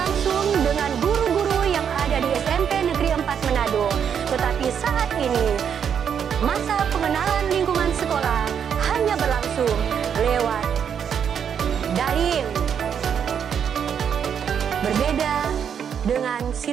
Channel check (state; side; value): quieter; left; 7.9 dB